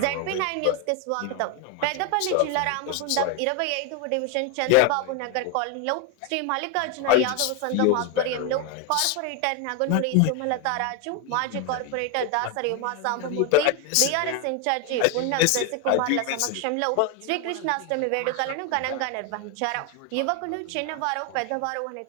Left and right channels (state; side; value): different; both; correlation 0.01